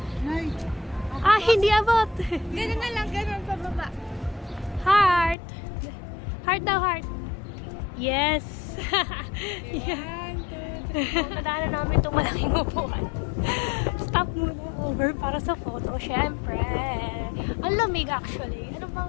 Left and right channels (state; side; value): drops out; right; at 5.4 s